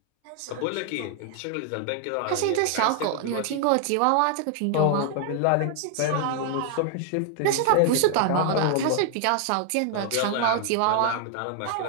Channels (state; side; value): different; both; correlation 0.00